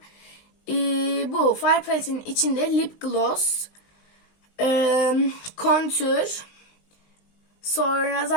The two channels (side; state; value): right; late; 19 ms